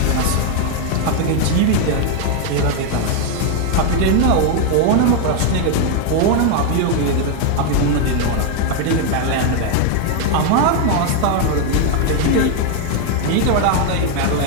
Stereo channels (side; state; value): both; different; correlation 0.00